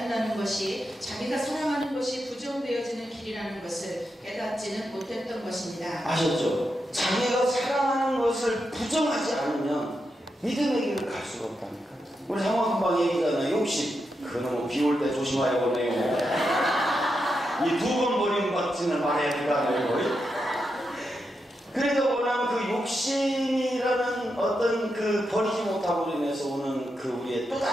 것이 자기가 사랑하는 것이 부정되어지는 길이라는 것을 깨닫지는 못했던 것입니다. 아셨죠? 자기가 사랑하는 것을 부정하지 않으면 믿음의 길을 갈 수가 없다니까. 우리 상황금방 얘기잖아요. 욕심. 그놈은 비 올 때 조심하여 보내요. 이 2번 버림받지는 말해야 된다는 그래도 뭐냐면 그 욕심이라는 어떤 그 버리지 못함으로 인해서 오는 그 우리의 또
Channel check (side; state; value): both; normal; correlation 0.86